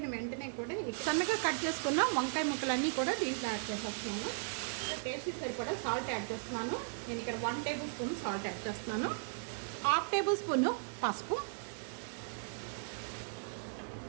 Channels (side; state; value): left; silent; digital silence